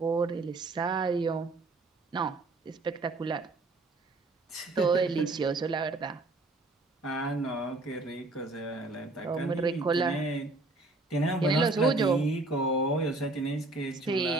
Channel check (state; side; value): quieter; left; 3.2 dB